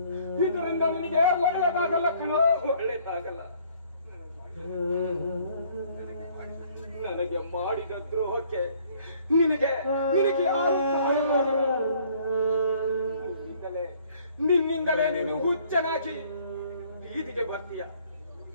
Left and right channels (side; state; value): both; inverted; correlation -0.60